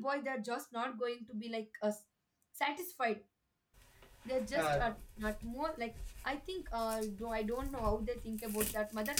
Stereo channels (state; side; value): identical; both; correlation 1.00